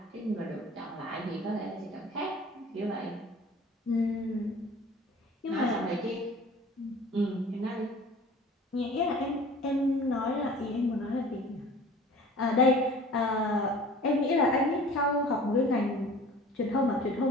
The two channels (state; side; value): normal; both; correlation 0.45